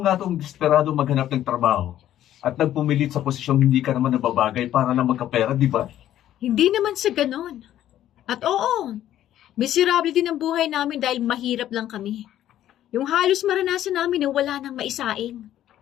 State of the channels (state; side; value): quieter; right; 12.2 dB